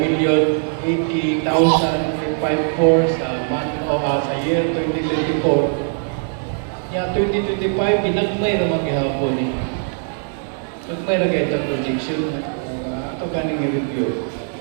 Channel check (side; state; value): left; silent; 58 dB below the other